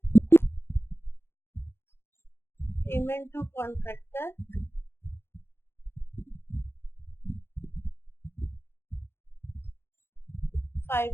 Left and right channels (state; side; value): late; right; 0.11 ms